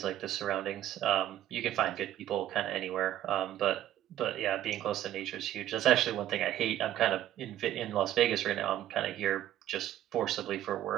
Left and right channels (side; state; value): left; quieter; 12.5 dB